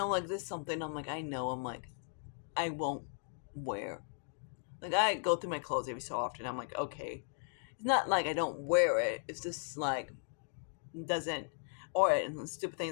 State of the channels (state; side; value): silent; right; digital silence